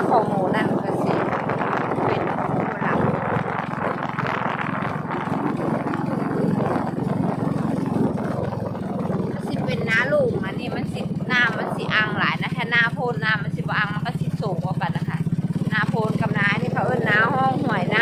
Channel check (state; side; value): identical; both; correlation 1.00